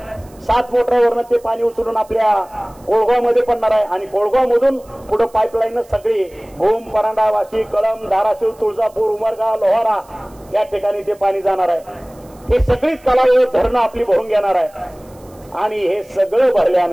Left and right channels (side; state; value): right; noise; hiss, 29 dB below the sound